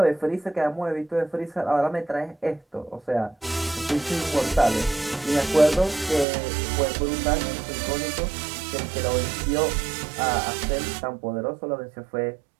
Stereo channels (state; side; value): drops out; left; at 6.2 s